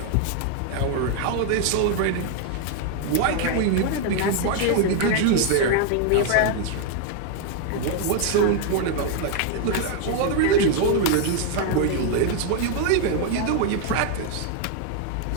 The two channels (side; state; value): both; different; correlation 0.00